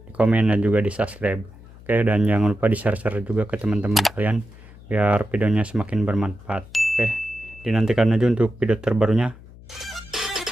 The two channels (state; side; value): noise; left; hum, 20 dB below the sound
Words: di komen, dan juga di subscribe. Oke, dan jangan lupa di share juga ke teman-teman kalian biar videonya semakin bermanfaat. Oke, dinantikan aja untuk video terbarunya.